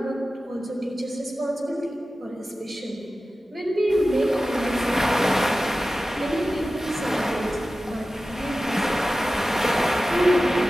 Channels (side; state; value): both; normal; correlation 0.95